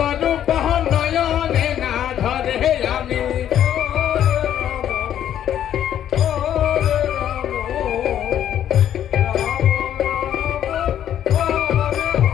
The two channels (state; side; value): quieter; right; 10.6 dB